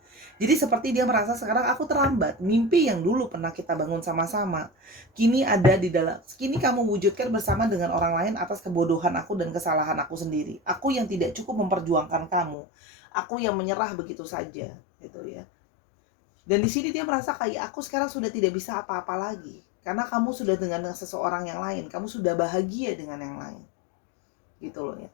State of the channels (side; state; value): right; drops out; at 12.6 s